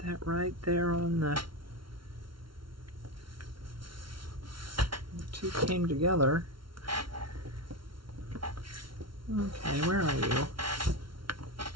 that right there on the two came together. Okay, where are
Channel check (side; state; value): left; late; 0.74 ms